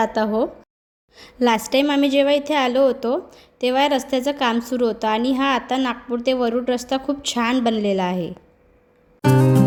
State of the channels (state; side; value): identical; both; correlation 1.00